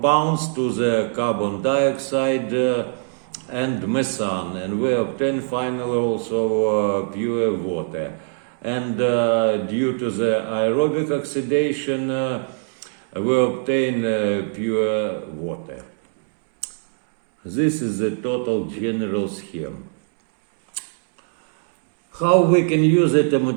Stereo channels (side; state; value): left; silent; 64 dB below the other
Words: to the carbon dioxide and methane, and we obtain finally also pure water. And due to the aerobic oxidation, we obtain pure water. This is the total general scheme. How we can use the